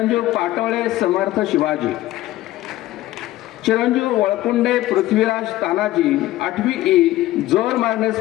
पाटोळे समर्थ शिवाजी। चिरंजीव वळकुंडे पृथ्वीराज तानाजी 8वी ई जोर मारणे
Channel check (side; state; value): right; quieter; 15.7 dB